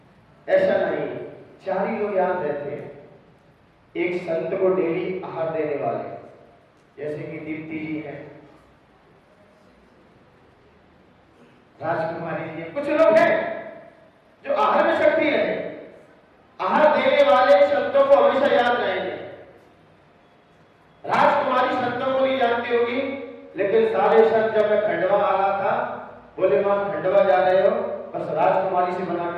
ऐसा नहीं, 4 ही लोग याद रहते हैं। एक संत को डेली आहार देने वाले, जैसे कि दीप्ति जी हैं, राजकुमारी जी, कुछ लोग हैं जो आहार में शक्ति है। आहार देने वाले संतों को हमेशा याद रहेंगे। राजकुमारी संतों को नहीं जानती होगी, लेकिन सारे संत जब मैं खंडवा आ रहा था बोले मां खंडवा जा रहे हो, बस राजकुमारी से बना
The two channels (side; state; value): both; identical; correlation 1.00